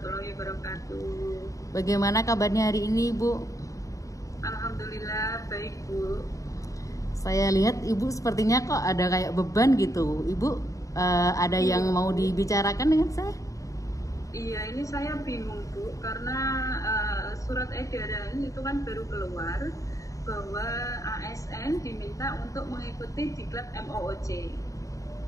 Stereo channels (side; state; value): right; late; 0.16 ms